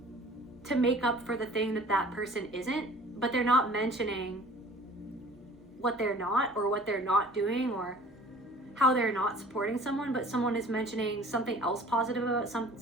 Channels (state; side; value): normal; both; correlation 0.48